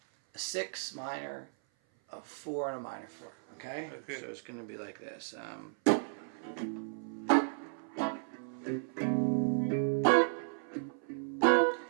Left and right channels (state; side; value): silent; left; 55 dB below the other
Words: a 6 minor, a 4, and a minor 4, okay? So it's going to be like this.